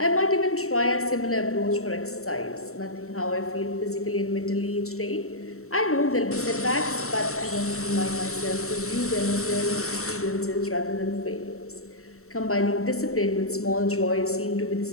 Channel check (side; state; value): right; late; 0.64 ms